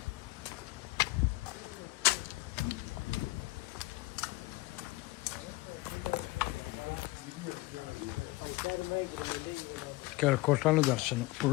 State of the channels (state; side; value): quieter; right; 20.5 dB